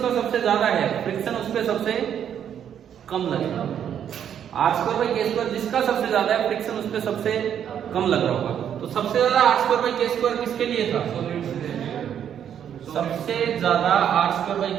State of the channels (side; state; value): left; quieter; 9.1 dB